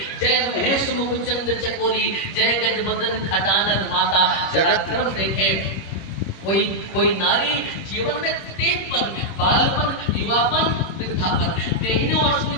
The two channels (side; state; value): right; late; 26 ms